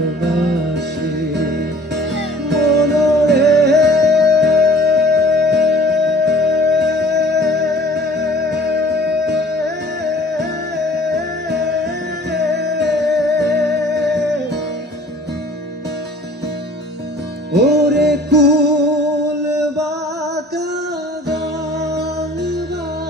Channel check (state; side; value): normal; both; correlation 0.50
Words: মনরে ওরে কুল বাঁকা গান